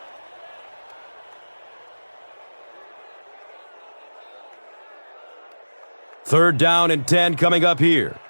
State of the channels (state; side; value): inverted; both; correlation -1.00